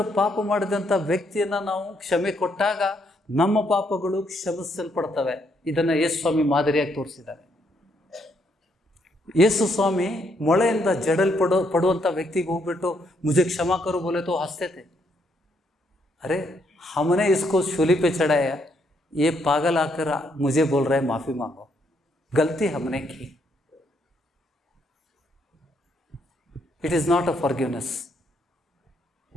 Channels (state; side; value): normal; both; correlation 0.74